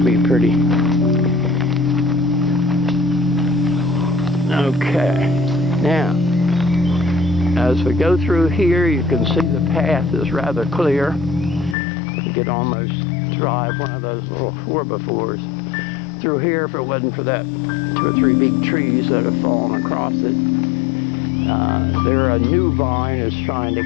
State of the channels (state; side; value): drops out; right; at 11.8 s